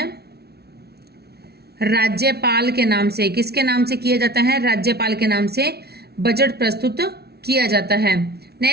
राज्यपाल के नाम से। किसके नाम से किया जाता है? राज्यपाल के नाम से बजट प्रस्तुत किया जाता है।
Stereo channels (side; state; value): left; late; 0.47 ms